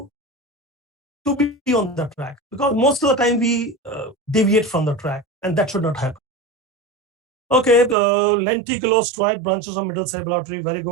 to be on the track, because most of the time we deviate from the track, and that should not happen. Okay, the lenticulostriate branches of middle cerebral artery, very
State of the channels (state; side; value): drops out; left; at 8.0 s